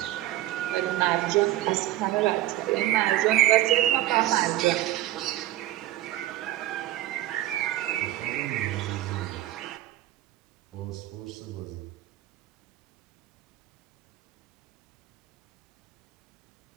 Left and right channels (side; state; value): left; quieter; 14.9 dB